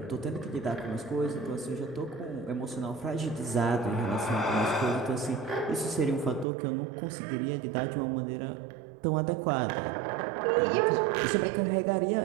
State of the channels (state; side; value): drops out; left; at 6.5 s